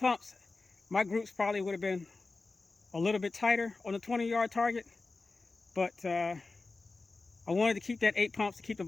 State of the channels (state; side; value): quieter; right; 3.7 dB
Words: my groups probably would have been a little bit tighter on the 20-yard target. But I wanted to keep that 8 pumps to keep the